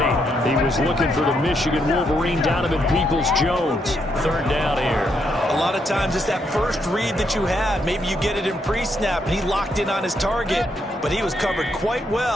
He was looking for the Michigan Wolverine, Donovan Peoples-Jones. Third down here. A lot of times it's that first read that you had. Maybe you get it in pre-snap, and he locked in on his target, but he was covered quite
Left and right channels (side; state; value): both; normal; correlation 0.77